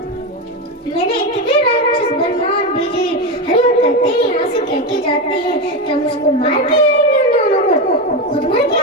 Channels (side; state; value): both; normal; correlation 0.15